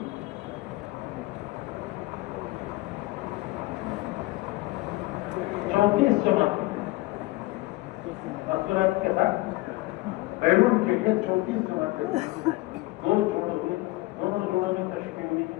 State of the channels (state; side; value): quieter; right; 20.4 dB